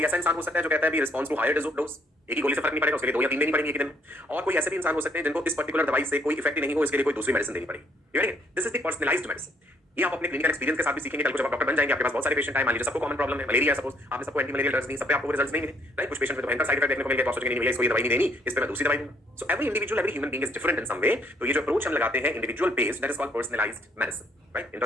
ऐसा इंसान हो सकता है जो कहता है भी रिस्पॉन्स टू हायर डोज, एक ही गोली से फर्क नहीं पड़ेगा, उसके लिए 2 या 3 देनी पड़ेगी एक दिन में। और कोई ऐसे भी इंसान हो सकते हैं जिनको इस पर्टिकुलर दवाई से कोई इफेक्ट ही नहीं हो, इसके लिए कोई दूसरी मेडिसिन देनी पड़ेगी। This is the personalised medicine. ये आप अपने क्लिनिकल एक्सपीरियंस के साथ भी सीखेंगे। कल को जब आप डॉक्टर बन जाएंगे, आपके पास बहुत सारे पेशेंट आए, मान लीजिए सबको कॉमन प्रॉब्लम है, मलेरिया सपोज, आपने सबको एंटी मलेरियल ड्रग्स दी, सब पे आपको रिजल्ट्स नहीं मिले, राइट? कुछ पेशेंट में तो भयंकर साइड इफेक्ट देखने को मिल गया, तो सोचेंगे नहीं भैया इसको ये दवाई नहीं देनी, इस पे मैं दूसरी दवाई दूंगा। So every individual, every human being is different in some way. तो ये जो अप्रोच हम लगाते हैं individual based, that is called personalised medicine, right?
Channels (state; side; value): normal; both; correlation 0.68